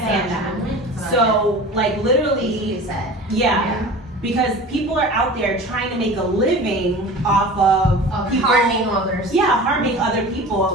stand that. So like literally, It's sad. because people are out there trying to make a living off of people Harming others. harming other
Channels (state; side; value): normal; both; correlation 0.37